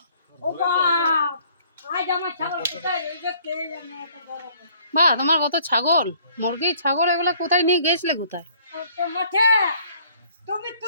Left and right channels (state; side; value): inverted; both; correlation -0.59